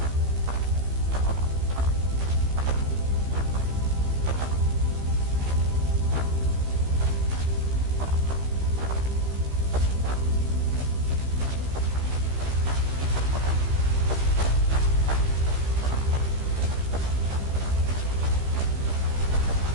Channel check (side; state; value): left; late; 15 ms